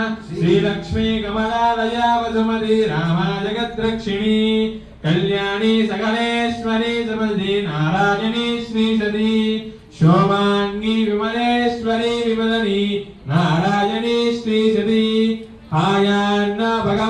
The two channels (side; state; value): both; identical; correlation 1.00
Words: श्रीलक्ष्मी कमलालया वसुमती रामा जगद्रक्षिणी कल्याणी सकलेश्वरी समृद्धि नारायणी श्रीसती शोभांगी विमलेश्वरी विमलनी नारायणी श्रीसती आयान्न